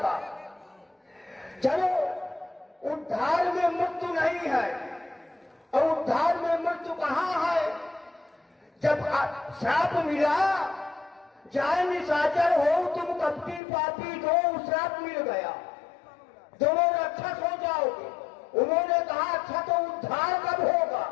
चलो, उद्धार में मृत्यु नहीं है। और उद्धार में मृत्यु कहाँ है? जब श्राप मिला, जाए निशाचर हो तुम कपटी पापी, दो श्राप मिल गया। दोनों ने अच्छा सो जाओगे। उन्होंने कहा अच्छा तो उद्धार कब होगा?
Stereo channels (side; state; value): right; drops out; at 13.6 s